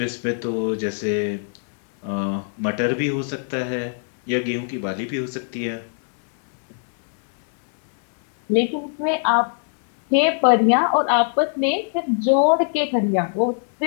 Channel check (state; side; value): silent; right; 62 dB below the other